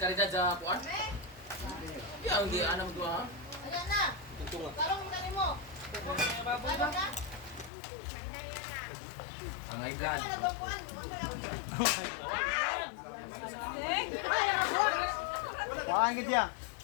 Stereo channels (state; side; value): drops out; right; at 7.7 s